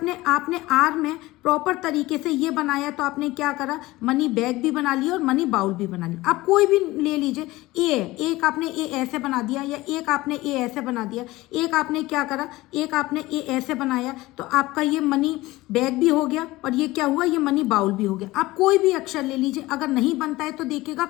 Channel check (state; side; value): quieter; right; 19.1 dB